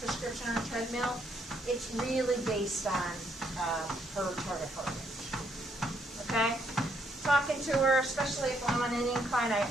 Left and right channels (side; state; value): both; normal; correlation 0.72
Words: prescription on a treadmill. It's really based on her target heart rate. Okay? Talking to her, especially if I'm on an incline,